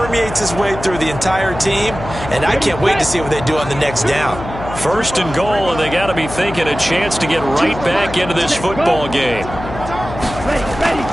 its way through the entire team, and I can't wait to see what they do on the next down. 1st and goal, and they got to be thinking a chance to get right back into this football game.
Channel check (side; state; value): left; noise; hum, 10 dB below the sound